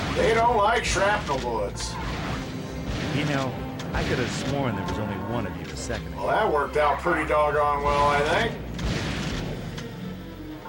They don't like shrapnel bullets. You know, I could have sworn there was only one of you a second ago. Well, that worked out pretty doggone well, I think.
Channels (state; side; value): identical; both; correlation 1.00